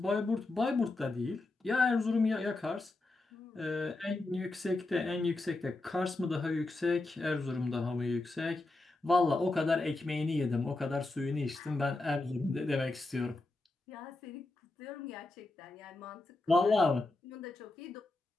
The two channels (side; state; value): right; quieter; 3.1 dB